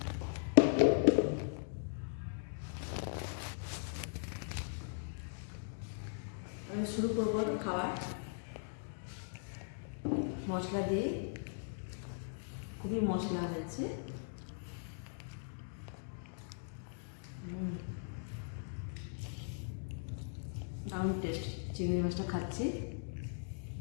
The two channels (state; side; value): silent; right; digital silence